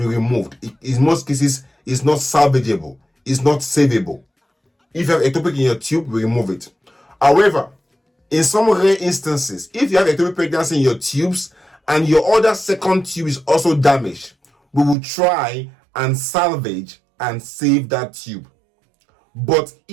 removed. In most cases, it's not salvageable. It's not savable. If you have ectopic in your tube, we remove it. However, in some rare instances, if you have ectopic pregnancy in your tubes and your other second tube is also damaged, we will try and salvage and save that tube. But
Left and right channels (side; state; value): left; drops out; at 15.0 s